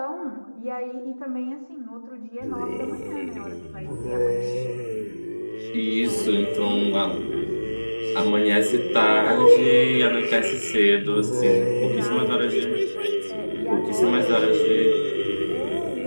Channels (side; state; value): both; inverted; correlation -1.00